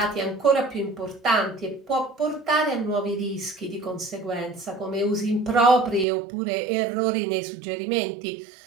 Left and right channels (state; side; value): drops out; left; at 6.1 s